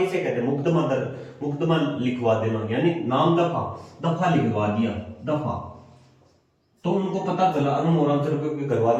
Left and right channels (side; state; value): both; identical; correlation 1.00